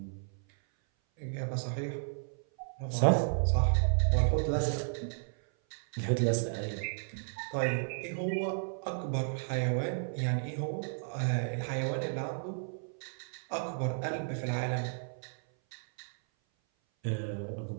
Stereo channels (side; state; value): left; silent; 56 dB below the other